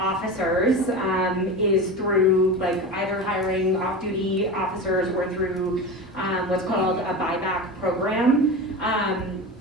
is through like either hiring off-duty officers or through what's called a buyback program.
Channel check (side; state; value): both; normal; correlation 0.26